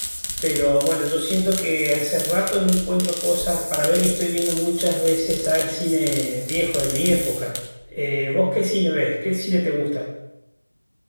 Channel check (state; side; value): inverted; both; correlation -1.00